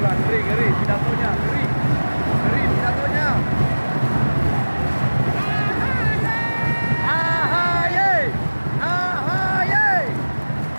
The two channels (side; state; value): both; inverted; correlation -1.00